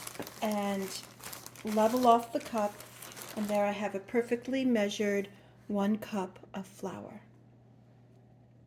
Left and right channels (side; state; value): both; identical; correlation 1.00